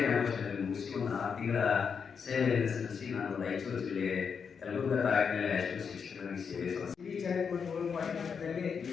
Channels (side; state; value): right; quieter; 6.3 dB